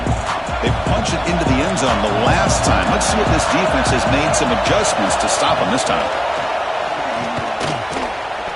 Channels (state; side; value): identical; both; correlation 1.00